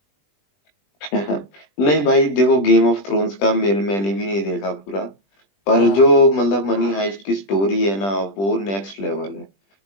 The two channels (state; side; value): late; right; 20 ms